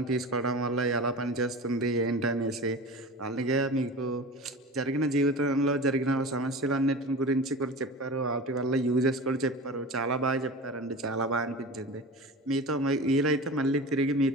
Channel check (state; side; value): normal; both; correlation 0.33